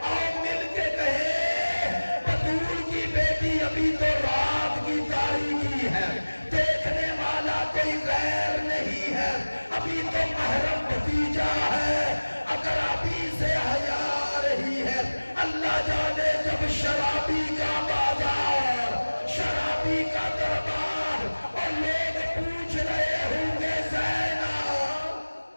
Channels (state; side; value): inverted; both; correlation -1.00